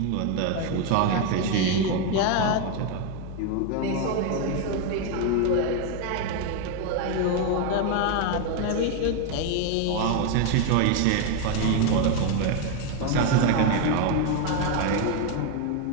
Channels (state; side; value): different; both; correlation 0.01